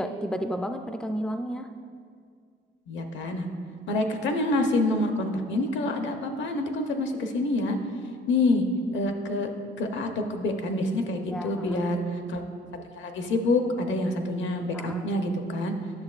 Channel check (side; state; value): both; normal; correlation 0.53